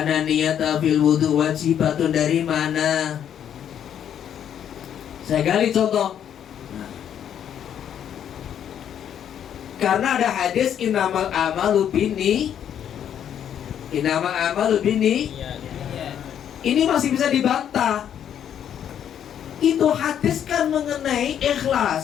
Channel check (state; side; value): quieter; right; 9.4 dB